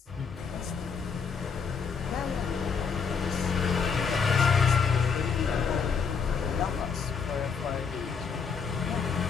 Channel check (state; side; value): quieter; right; 5.8 dB